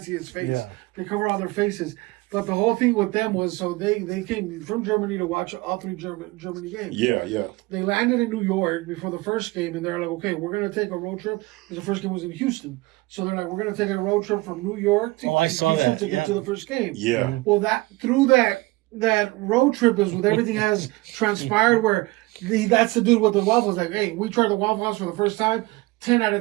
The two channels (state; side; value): quieter; left; 21.7 dB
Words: see his face. Yeah. They cover all their faces. But the whole thing with them was so they came from Germany to watch all 3 Germany games. Yeah. They landed in New York before the first game, and they're like, okay, we're going to take a road trip. Because the first game was in Houston. So they're like, we're going to take a road trip from New York to I saw Houston that, to get yeah. to the first game. Yeah. Well, through that road trip is with everything has transpired where that's the dude with the waffles. Like, hey, we tried the Waffle House for the first time. 10 out